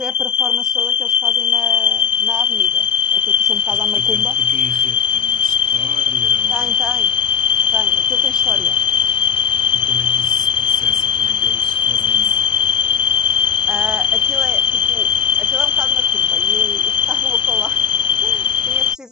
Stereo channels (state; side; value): quieter; right; 7.6 dB